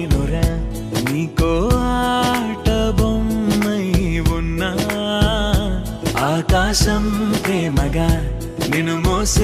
నీకో ఆట బొమ్మై ఉన్నా ఆకాశం ప్రేమగా నిన్ను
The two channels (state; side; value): identical; both; correlation 1.00